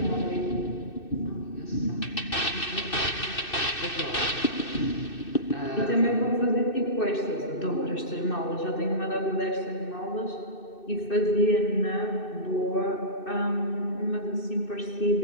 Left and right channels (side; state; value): right; late; 2.6 ms